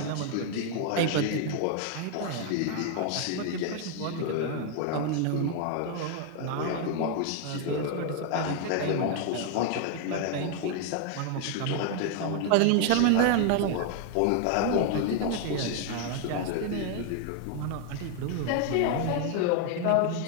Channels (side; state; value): both; different; correlation 0.00